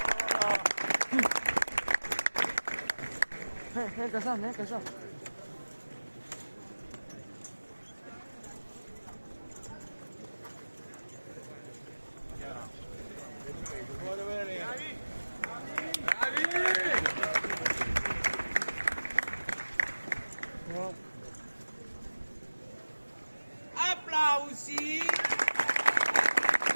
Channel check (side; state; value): both; inverted; correlation -1.00